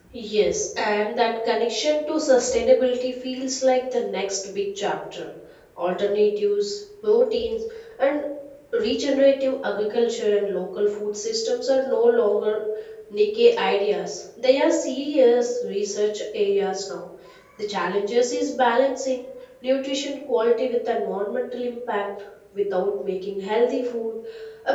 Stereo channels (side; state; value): both; identical; correlation 1.00